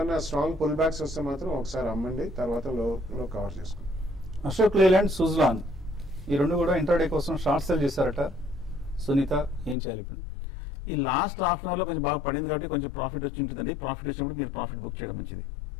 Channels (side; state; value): right; drops out; at 9.8 s